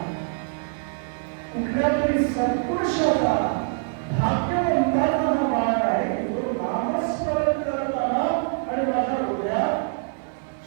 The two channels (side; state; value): left; silent; digital silence